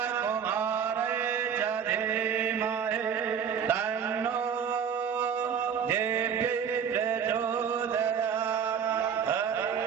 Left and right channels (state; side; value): quieter; left; 7.6 dB